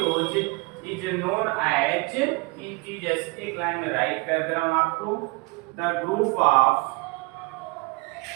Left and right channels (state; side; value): quieter; left; 26.7 dB